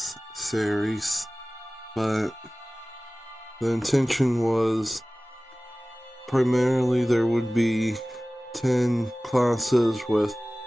series, but the intention was primarily there would be 10 classes with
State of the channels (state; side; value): normal; both; correlation 0.98